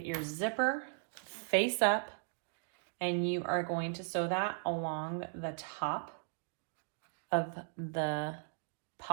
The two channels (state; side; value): silent; left; digital silence